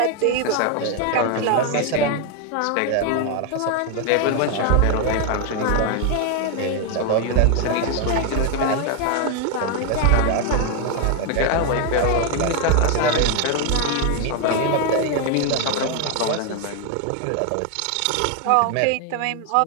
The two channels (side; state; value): both; different; correlation 0.00